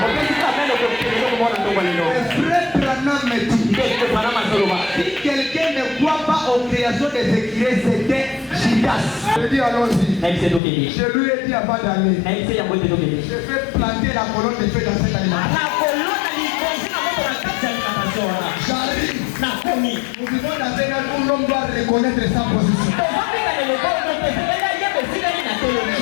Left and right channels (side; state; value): right; drops out; at 10.6 s